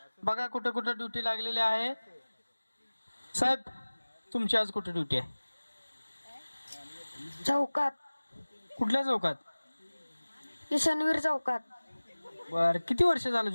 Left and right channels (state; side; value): inverted; both; correlation -1.00